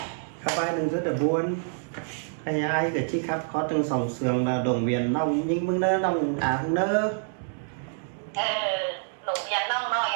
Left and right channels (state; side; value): silent; left; digital silence